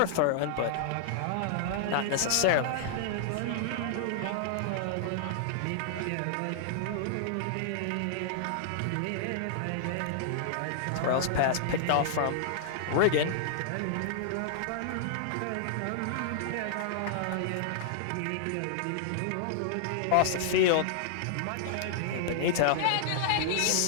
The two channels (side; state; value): both; different; correlation -0.01